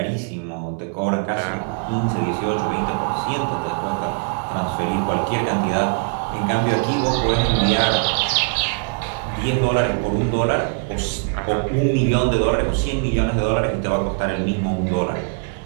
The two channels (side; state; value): left; quieter; 37.7 dB